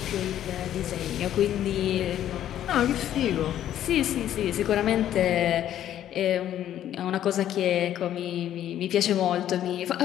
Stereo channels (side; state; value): right; quieter; 11.4 dB